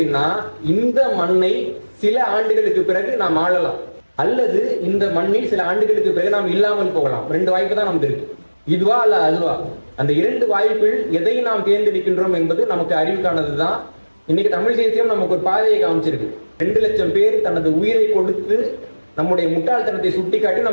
இந்த மண்ணை சில ஆண்டுகளுக்கு பிறகு நாம் ஆளலாம், அல்லது இந்த மண்ணில் சில ஆண்டுகளுக்கு பிறகு நாம் இல்லாமல் போகலாம். 2 வாய்ப்பு தான் நமக்கு இருக்கு, இதுவா அல்ல அதுவா. அந்த 2 வாய்ப்பில் எதை நாம் தேர்ந்தெடுக்கின்றோம் என்பது நமக்கு அறிவுக்கானதுதான். இன்னைக்கு தமிழ் தேசியம் நமக்கு ஒரு பாதையை காமிச்சிருக்கு. 2 லட்சம் பேர் தனது உயிரை கொடுத்து நம்முடைய முட்டாள்தனத்தை சுட்டி காட்டி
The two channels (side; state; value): both; inverted; correlation -1.00